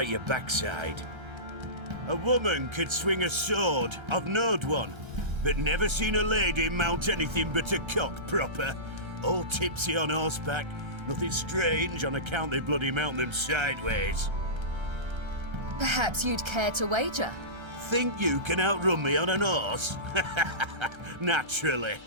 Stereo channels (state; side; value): late; left; 1.3 ms